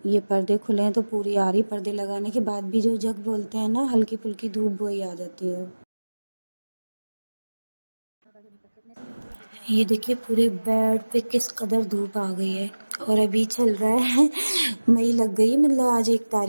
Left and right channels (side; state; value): both; inverted; correlation -1.00